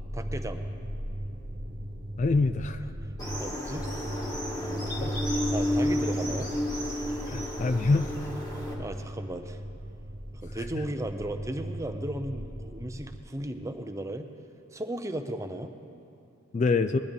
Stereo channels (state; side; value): normal; both; correlation 0.80